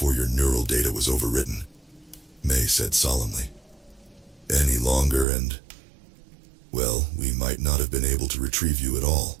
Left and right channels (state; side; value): drops out; left; at 5.2 s